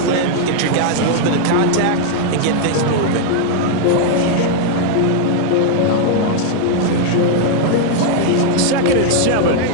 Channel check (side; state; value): both; different; correlation -0.01